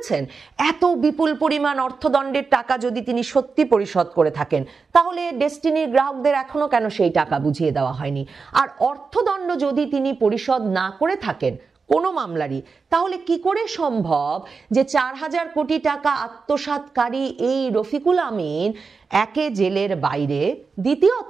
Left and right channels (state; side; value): quieter; left; 4.8 dB